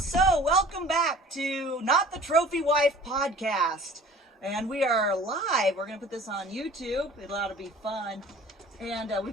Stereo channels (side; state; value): both; normal; correlation 0.47